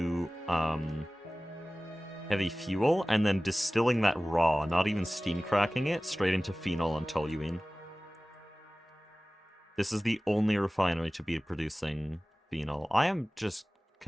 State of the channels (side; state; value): both; normal; correlation 0.98